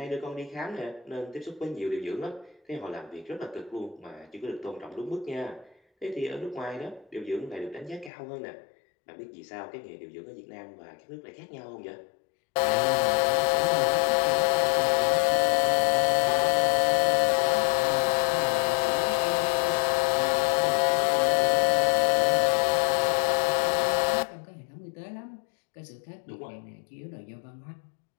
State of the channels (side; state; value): right; drops out; at 8.1 s